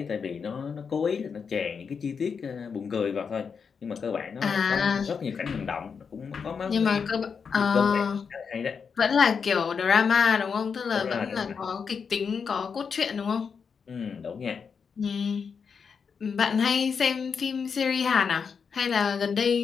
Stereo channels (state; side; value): quieter; right; 6.1 dB